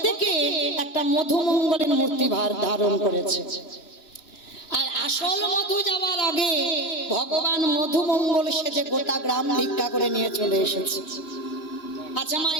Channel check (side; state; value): right; late; 3.1 ms